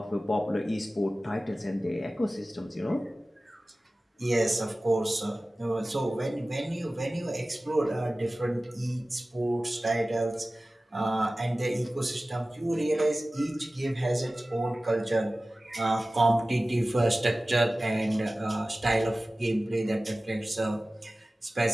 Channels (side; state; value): both; normal; correlation 0.97